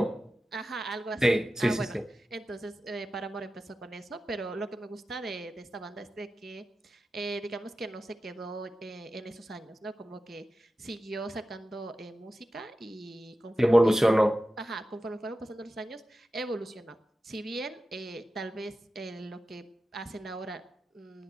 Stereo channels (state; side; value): normal; both; correlation 0.93